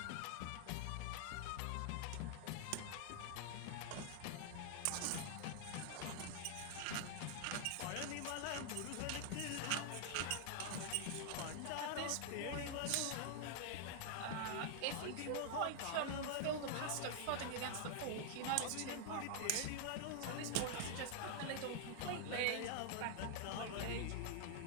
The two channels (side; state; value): both; different; correlation 0.00